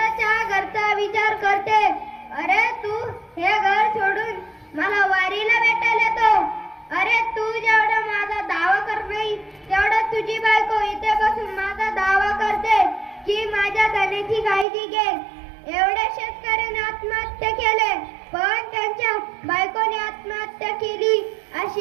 घरचा विचार करते. अरे तू हे घर सोडून मला वारीला भेटायला येतो. अरे तू जेवढा माझा दावा कर नाही तेवढा तुझी बायको इथे बसून माझा दावा करते की माझ्या धनाची काळजी घे. एवढ्या शेतकऱ्याने आत्महत्या केले पण त्यांच्या बायकोने आत्महत्या केली अशी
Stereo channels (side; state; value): left; drops out; at 14.7 s